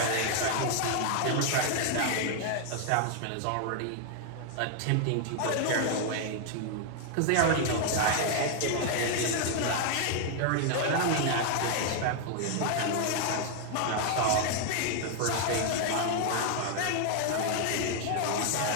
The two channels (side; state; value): both; different; correlation 0.00